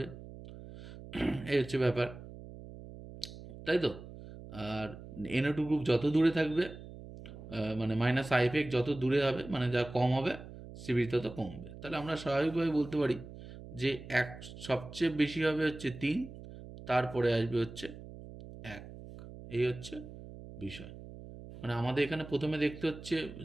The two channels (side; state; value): right; noise; hum, 14 dB below the sound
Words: এই হচ্ছে ব্যাপার, তাই তো? আর NO2 গ্রুপ যত দূরে থাকবে, মানে মাইনাস আই এফেক্ট যত দূরে হবে, মানে যা কম হবে, স্টেবিলিটি তত কমবে। তাহলে আমরা স্বাভাবিকভাবে বলতে পারি যে সবচেয়ে বেশি হবে হচ্ছে 3, তারপরে আসবে হচ্ছে 1। এই হচ্ছে বিষয়। মানে আমাদের এখানে প্রথমে দেখতে হচ্ছে